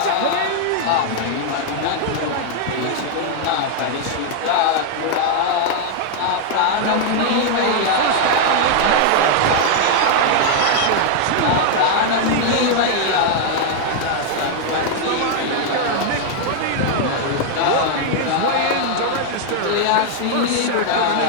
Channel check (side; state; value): both; different; correlation 0.00